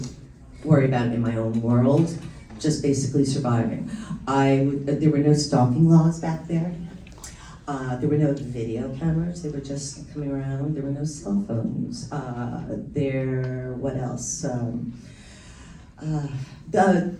worry about in my own world, just basically surviving. There were no stalking laws back there. There were no video cameras, they were just coming around. There were no cell phones. What else?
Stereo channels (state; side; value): identical; both; correlation 1.00